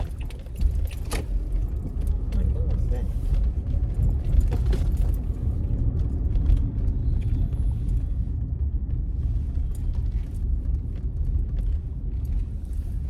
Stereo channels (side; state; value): both; identical; correlation 1.00